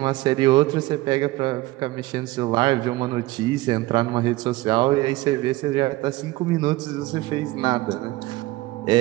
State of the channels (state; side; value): quieter; left; 18.7 dB